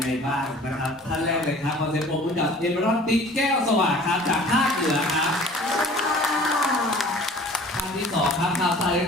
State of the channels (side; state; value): both; normal; correlation 0.47